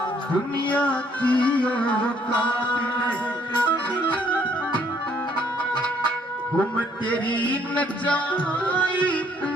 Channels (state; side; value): normal; both; correlation 0.65